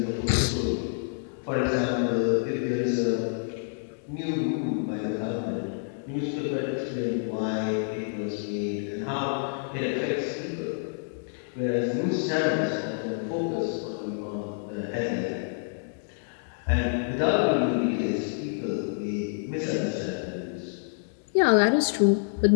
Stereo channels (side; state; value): right; silent; digital silence